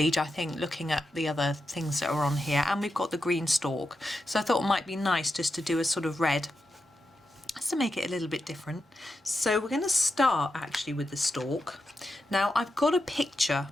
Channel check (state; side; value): normal; both; correlation 0.87